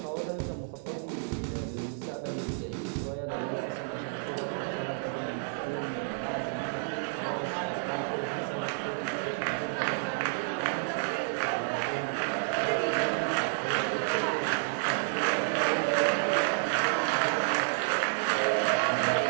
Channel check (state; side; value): silent; left; 58 dB below the other